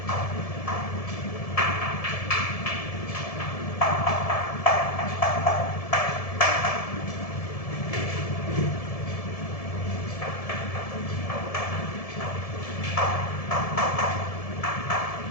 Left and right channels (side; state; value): right; late; 1.7 ms